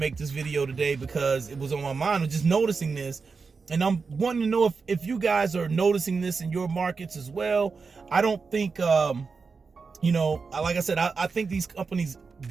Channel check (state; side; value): quieter; left; 4.8 dB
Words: this video today because it was on my mind. I was just noticing this, and I'm wanting to know if you guys are noticing this in your markets as well. I don't think, you know, like I said, I think these companies